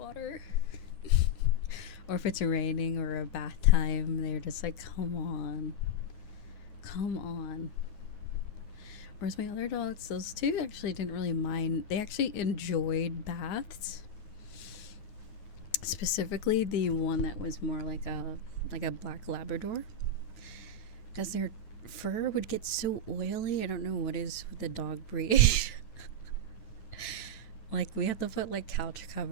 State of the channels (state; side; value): late; right; 9.5 ms